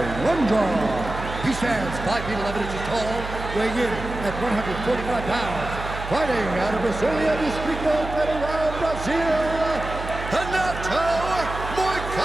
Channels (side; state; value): right; noise; hum, 9 dB below the sound